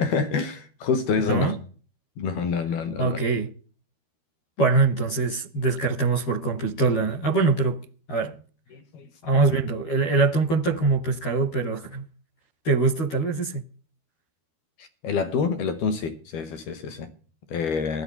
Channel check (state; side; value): late; right; 13 ms